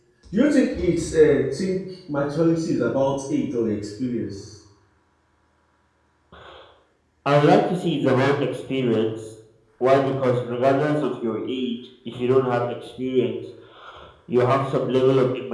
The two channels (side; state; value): both; identical; correlation 1.00